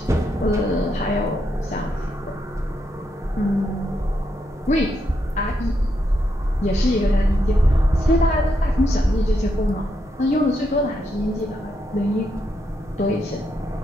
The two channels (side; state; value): both; normal; correlation 0.80